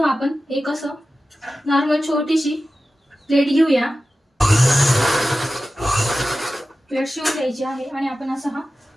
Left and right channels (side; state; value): both; normal; correlation 0.94